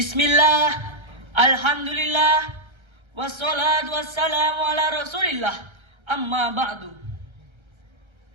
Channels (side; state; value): left; late; 1.3 ms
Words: alhamdulillah, wassalatu wassalamu ala rasulillah, amma ba'du.